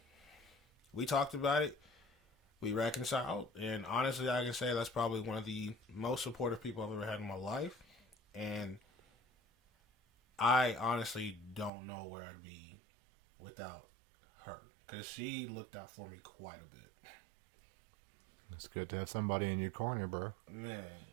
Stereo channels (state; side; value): drops out; left; at 11.7 s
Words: we talked about it. We reconciled, and honestly, I can say that's probably one of the most supportive people I've ever had in my life. And I honestly don't know where I'd be without her, because she looked out for me quite a bit. It's good to have somebody in your corner, bro.